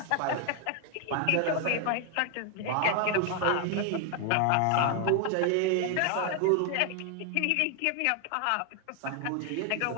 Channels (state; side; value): different; both; correlation 0.01